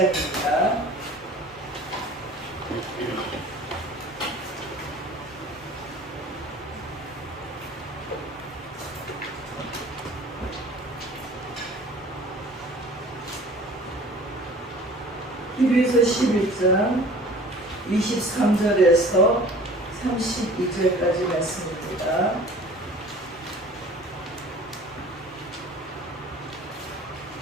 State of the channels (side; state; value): both; normal; correlation 0.46